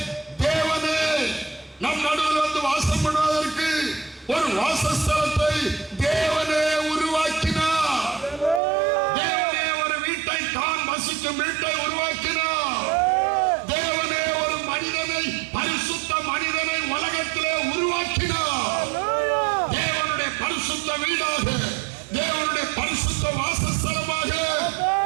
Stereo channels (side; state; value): left; drops out; at 8.6 s